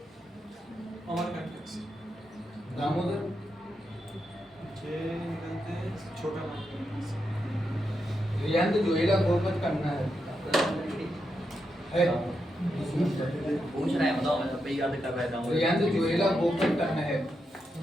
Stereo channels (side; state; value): both; normal; correlation 0.85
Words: अमरकंटक से दामोदर, जे निकलते हैं छोटा नागपुर से रियांद, जोहेला, गोबर, कन्ना है। पूछ रहे हैं बताओ मैं सब पे याद कर रहा था रियांद, जोहेला, गोबर, कन्ना है